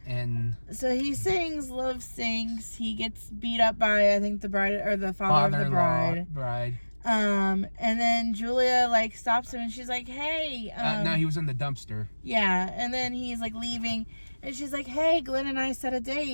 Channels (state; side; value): inverted; both; correlation -1.00